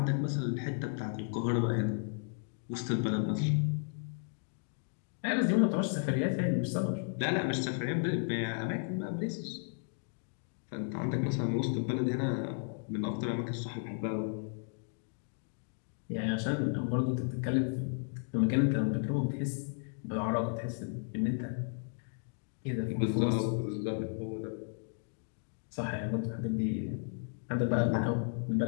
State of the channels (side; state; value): right; silent; 55 dB below the other